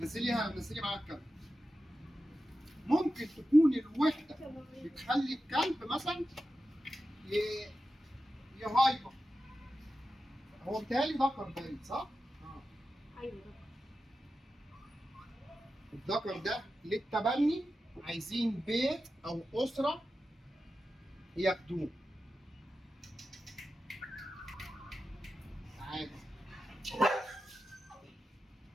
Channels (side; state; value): both; normal; correlation 0.92